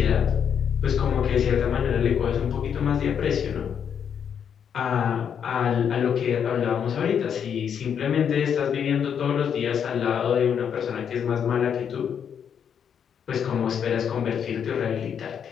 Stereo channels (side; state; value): right; quieter; 7.9 dB